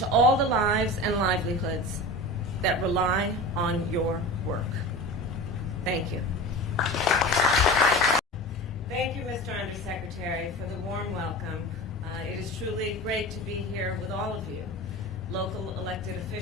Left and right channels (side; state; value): both; normal; correlation 0.32